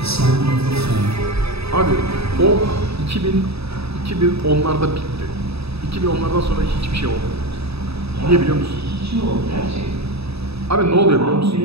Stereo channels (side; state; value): left; late; 0.78 ms